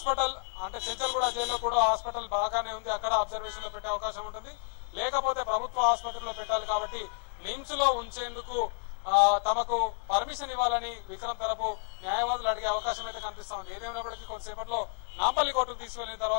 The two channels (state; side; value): silent; right; 57 dB below the other